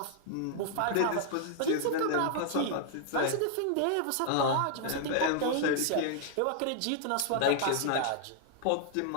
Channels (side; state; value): both; different; correlation -0.01